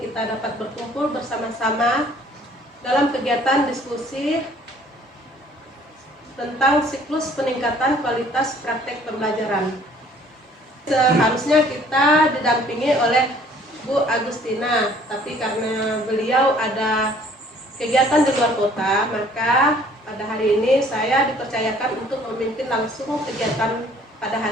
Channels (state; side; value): normal; both; correlation 0.56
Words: kita dapat berkumpul bersama-sama dalam kegiatan diskusi tentang siklus peningkatan kualitas praktek pembelajaran. Seharusnya kita didampingi oleh Bu Agustina, tapi karena beliau ada kegiatan di luar kota, maka pada hari ini saya dipercayakan untuk memimpin langsung kegiatan pada